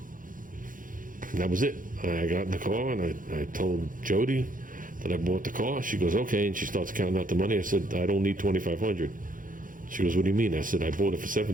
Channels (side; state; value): left; late; 0.39 ms